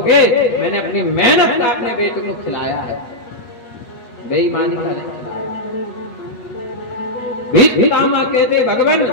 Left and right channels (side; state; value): right; late; 8.3 ms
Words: मैंने अपनी मेहनत का अपने बेटे को खिलाया है, बेईमानी का नहीं खिलाया। भीष्म पितामह कहते, भगवान